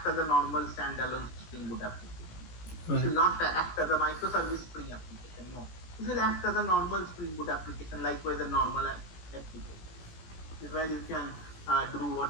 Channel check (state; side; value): late; right; 18 ms